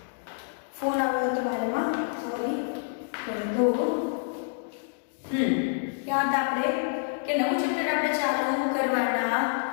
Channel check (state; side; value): silent; right; digital silence